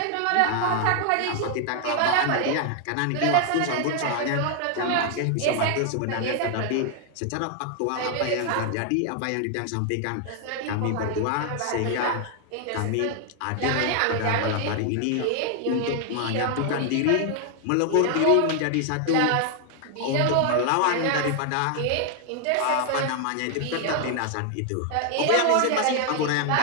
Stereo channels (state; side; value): different; both; correlation 0.00